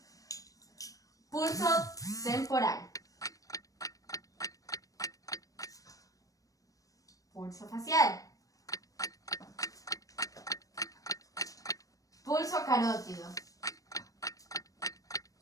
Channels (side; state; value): right; late; 0.16 ms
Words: Pulso temporal. Pulso facial. Pulso carótido.